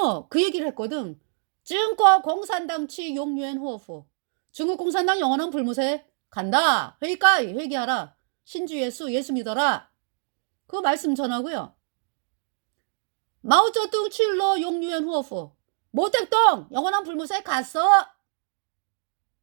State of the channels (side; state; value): left; silent; digital silence